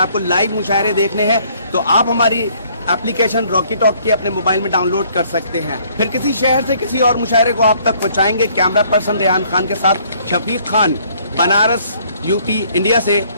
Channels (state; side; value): inverted; both; correlation -0.62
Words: लाइव मुशायरे देखने हैं तो आप हमारी एप्लीकेशन रॉकी टॉक की अपने मोबाइल में डाउनलोड कर सकते हैं। फिर किसी शहर से किसी और मुशायरे को आप तक पहुंचाएंगे। कैमरा पर्सन रेहान खान के साथ शफीक खान, बनारस, यूपी, इंडिया से